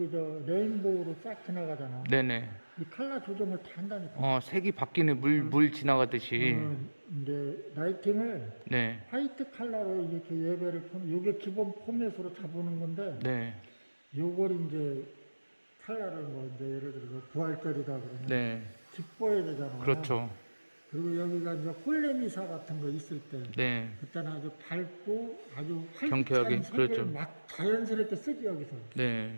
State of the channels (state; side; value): inverted; both; correlation -1.00